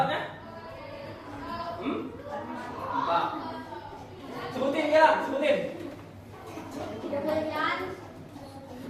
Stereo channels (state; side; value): identical; both; correlation 1.00